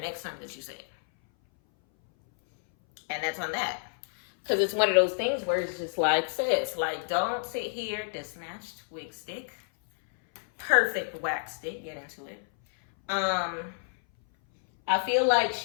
next time that you say it. And that's on that. Because it's one of those things where it's just like, sis, like, don't sit here, the snatched wig stick, perfect wax stick, get into it. I feel like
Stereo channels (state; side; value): silent; right; 58 dB below the other